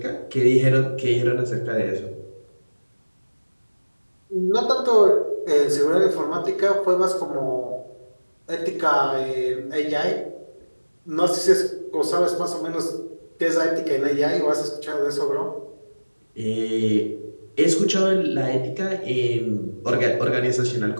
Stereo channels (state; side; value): inverted; both; correlation -1.00